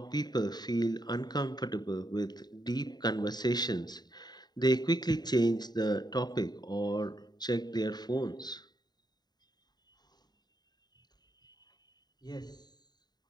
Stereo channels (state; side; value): late; right; 0.20 ms